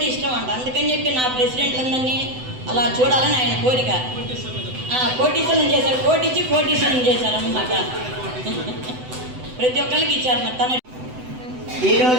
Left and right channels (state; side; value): late; left; 7.9 ms